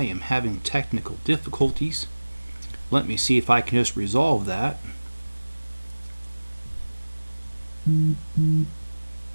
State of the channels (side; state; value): both; inverted; correlation -1.00